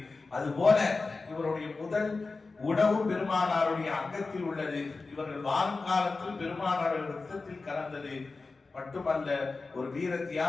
அதுபோல இவருடைய முதல் உணவு பெருமானாருடைய அங்கத்தில் உள்ளது. இவர்கள் வாழும் காலத்தில் பெருமானாருடைய ரத்தத்தில் கலந்தது மட்டுமல்ல, ஒரு வீர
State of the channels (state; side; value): quieter; right; 3.9 dB